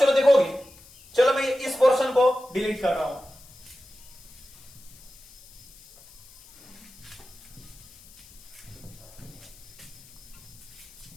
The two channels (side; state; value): left; noise; hiss, 22 dB below the sound